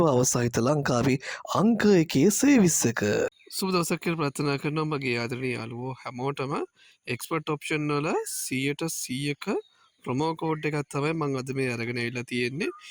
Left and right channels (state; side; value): identical; both; correlation 1.00